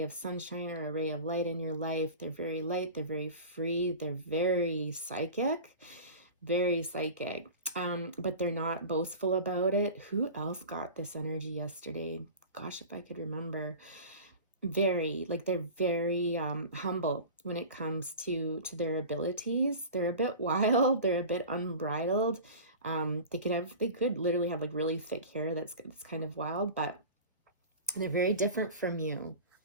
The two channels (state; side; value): inverted; both; correlation -0.35